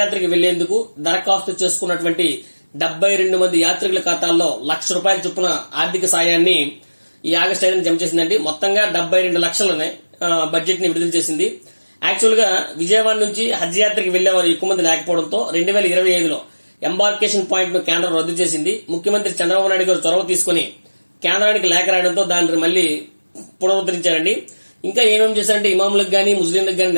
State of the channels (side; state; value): both; inverted; correlation -1.00